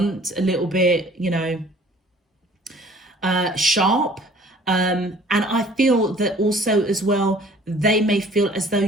a little bit, sharp. And I feel that also as well, they may feel as though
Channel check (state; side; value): normal; both; correlation 0.53